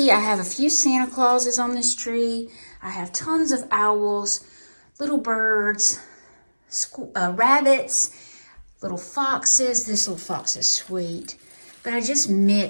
I have a few Santa Clauses on this tree. I have tons of owls, little birds, rabbits, little foxes. This little fox is sweet. But I just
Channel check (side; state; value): both; inverted; correlation -1.00